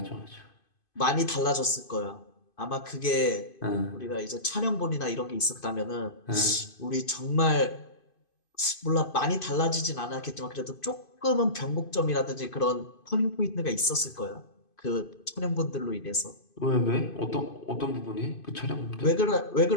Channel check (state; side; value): late; right; 2.5 ms